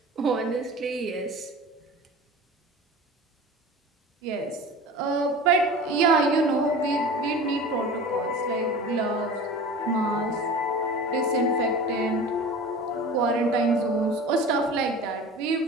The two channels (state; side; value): normal; both; correlation 0.36